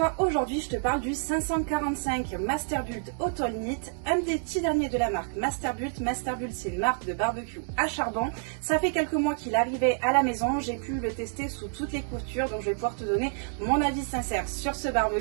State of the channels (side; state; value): left; silent; digital silence